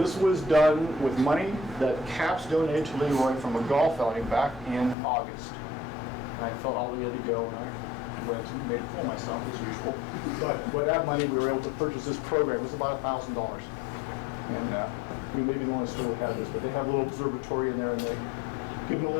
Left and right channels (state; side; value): drops out; right; at 5.0 s